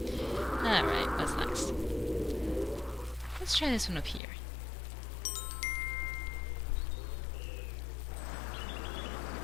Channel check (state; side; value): drops out; right; at 4.2 s